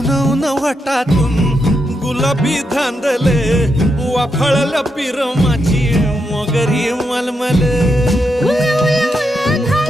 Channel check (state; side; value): normal; both; correlation 0.83